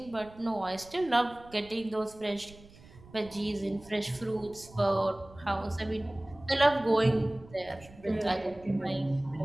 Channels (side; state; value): right; noise; rumble, 21 dB below the sound